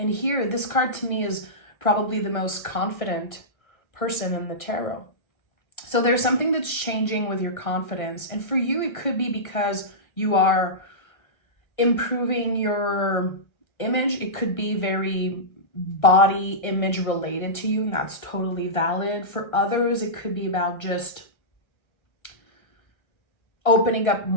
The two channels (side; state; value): right; late; 1.3 ms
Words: here, this card to me is probably the most confident person in the tarot. So there's something that's changing with your confidence. And for you, it could be because you are improving your image. It could be very body image related to you, and that's totally valid. For others, it could be about just opening up